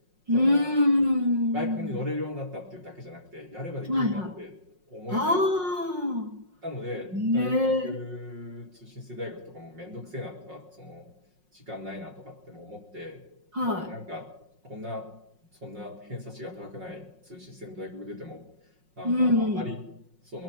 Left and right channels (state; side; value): late; left; 5.5 ms